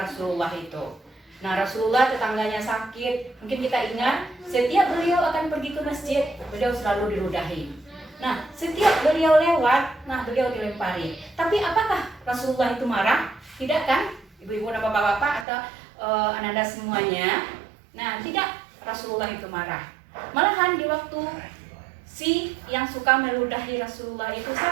itu. Nah, Rasulullah tetangganya sakit, mungkin kita ingat setiap beliau akan pergi ke masjid, beliau selalu diludahi. Nah, setiap beliau lewat, beliau dilempari. Tapi apakah Rasulullah itu marah? Tidak kan? Ibu-ibu dan bapak-bapak atau Ananda semuanya. Nah, tidak, Rasulullah itu marah. Malahan di waktu si yang suka meludahi Rasulullah itu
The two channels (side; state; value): left; drops out; at 15.5 s